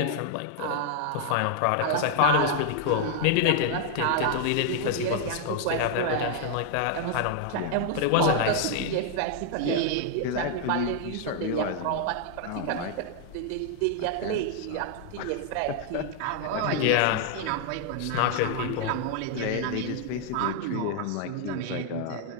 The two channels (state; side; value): different; both; correlation 0.00